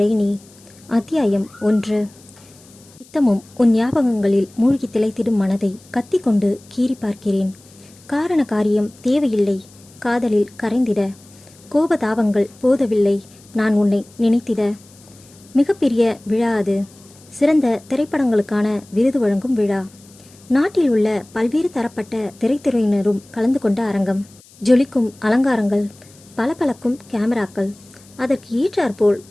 நீ. அத்தியாயம் 1. நித்தமும் உன் ஞாபகங்களில் மூழ்கி திளைத்திடும் மனதை கத்திக்கொண்டு கீறி பார்க்கிறேன். காரண காரியம் தேவையில்லை காதலில் கரைந்திட. கோபதாபங்கள் போதவில்லை நான் உன்னை நினைத்திட. மிகப்பெரிய விழா அது. சிறந்த திரைப்படங்களுக்கான விருது வழங்கும் விழா. நாட்டில் உள்ள பல்வேறு தரப்பட்ட திரைத்துறையினரும் கலந்து கொண்ட அரங்கம். ஜொலிக்கும் அலங்காரங்கள், பளபளக்கும் கேமராக்கள், அதற்கு ஏற்றாற்போல்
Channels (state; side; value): noise; left; hiss, 26 dB below the sound